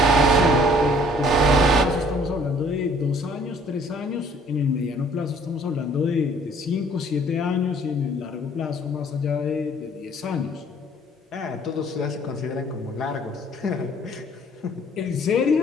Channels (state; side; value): normal; both; correlation 0.57